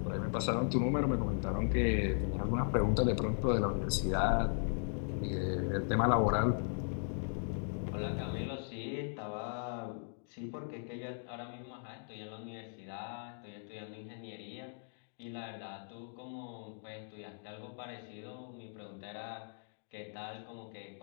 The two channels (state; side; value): silent; right; digital silence